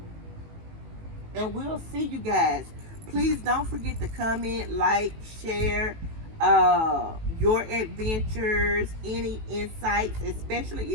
And we'll see you guys. Please don't forget to comment, like, share your adventures, any insights, especially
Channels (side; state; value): left; late; 18 ms